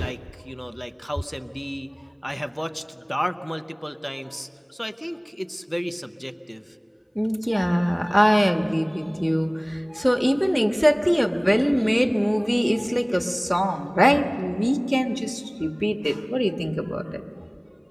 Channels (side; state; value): both; identical; correlation 1.00